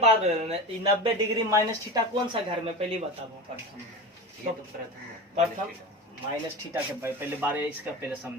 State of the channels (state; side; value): normal; both; correlation 0.28